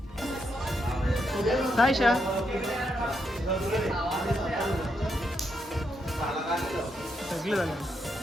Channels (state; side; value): normal; both; correlation 0.80